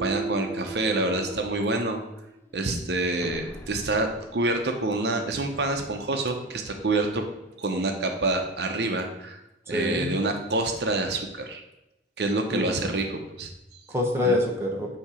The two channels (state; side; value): normal; both; correlation 0.27